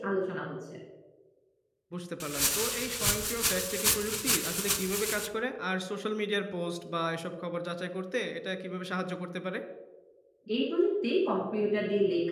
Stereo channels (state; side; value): identical; both; correlation 1.00